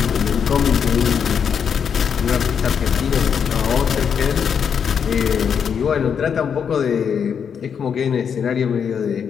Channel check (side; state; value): right; quieter; 7.2 dB